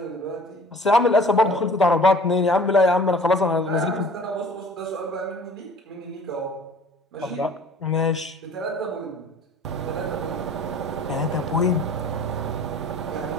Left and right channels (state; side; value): normal; both; correlation 0.47